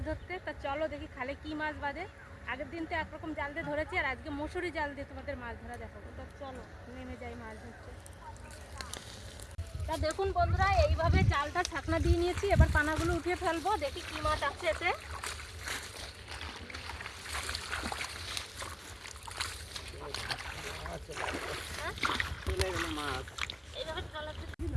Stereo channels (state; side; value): identical; both; correlation 1.00